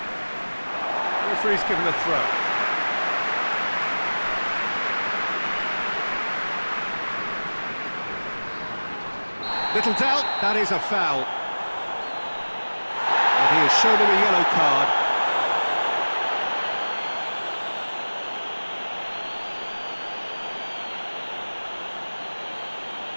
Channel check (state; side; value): inverted; both; correlation -1.00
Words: Referee's given a throw. Little doubt, that is a foul. And he has shown him a yellow card.